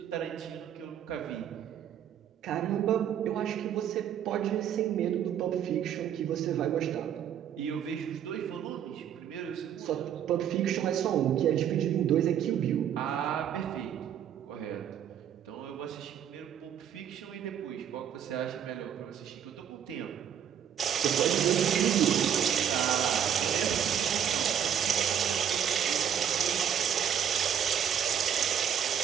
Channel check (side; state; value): left; quieter; 9.1 dB